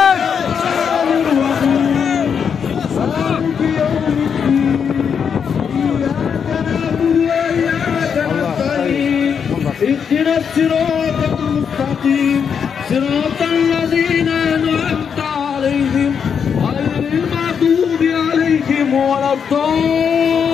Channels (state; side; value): quieter; right; 7.0 dB